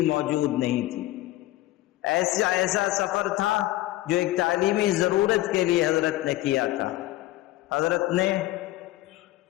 موجود نہیں تھی۔ ایسا سفر تھا جو ایک تعلیمی ضرورت کے لیے حضرت نے کیا تھا۔ حضرت نے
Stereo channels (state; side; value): quieter; right; 16.5 dB